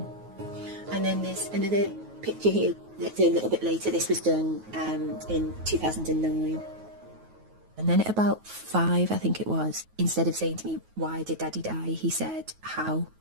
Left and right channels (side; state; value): left; late; 9.3 ms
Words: And then there's another picture here that's a little bit later. This was done in 2009. And then at about 5, I think it was, instead of saying to me, why did Daddy die? He said, how